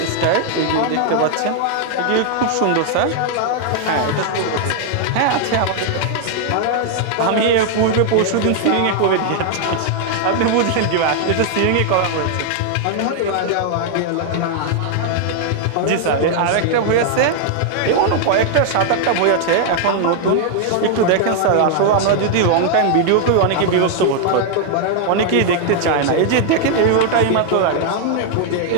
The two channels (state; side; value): different; both; correlation 0.00